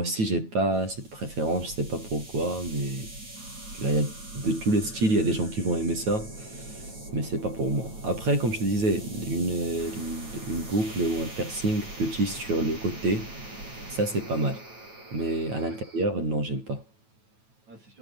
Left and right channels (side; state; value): left; late; 9.2 ms